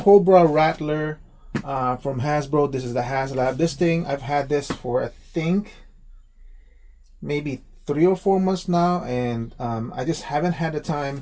Rattler from Hasbro. This is the Haslab. This thing, I've had this for, I think, maybe 3 or 4 months now, and I just haven't had the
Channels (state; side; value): identical; both; correlation 1.00